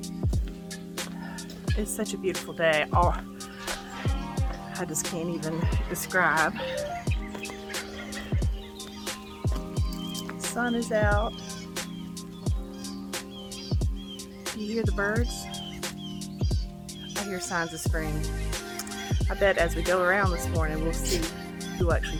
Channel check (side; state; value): both; identical; correlation 1.00